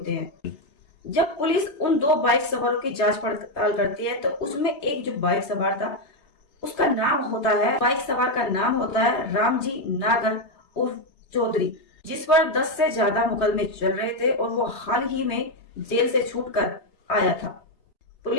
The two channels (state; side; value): late; right; 3.2 ms